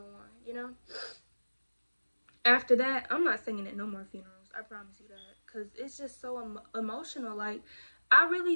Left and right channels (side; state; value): both; inverted; correlation -1.00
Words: on, After that, I'm not singing at no more funerals. I promise you that, because it's just so emotional. Like, I